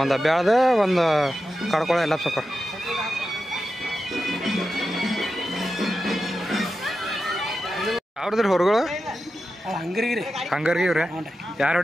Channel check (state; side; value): normal; both; correlation 0.91